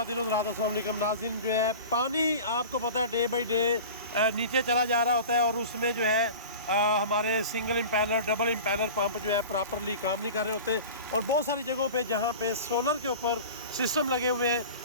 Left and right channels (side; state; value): both; inverted; correlation -0.36